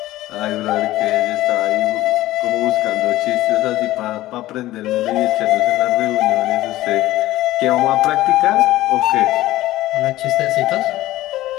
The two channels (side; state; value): right; quieter; 16.1 dB